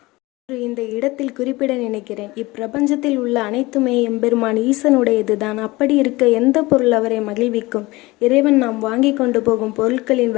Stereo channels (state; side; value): quieter; right; 21.2 dB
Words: இந்த இடத்தில் குறிப்பிட நினைக்கிறேன். இப்பிரபஞ்சத்தில் உள்ள அனைத்துமே எம்பெருமான் ஈசனுடையதுதான். அப்படி இருக்க எந்த பொருள் அவரை மகிழ்விக்கும்? இறைவன் நாம் வாங்கி கொண்டு போகும் பொருட்களின்